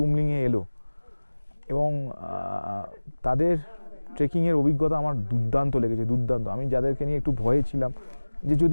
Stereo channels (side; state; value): both; inverted; correlation -1.00